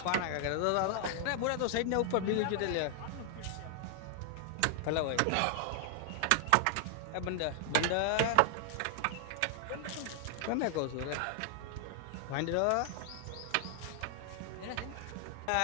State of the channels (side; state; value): both; different; correlation 0.00